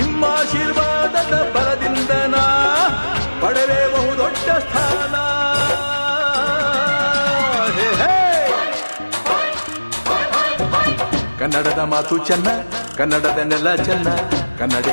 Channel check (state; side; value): inverted; both; correlation -1.00